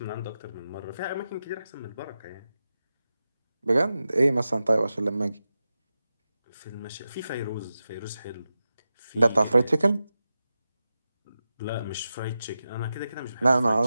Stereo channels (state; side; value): inverted; both; correlation -0.92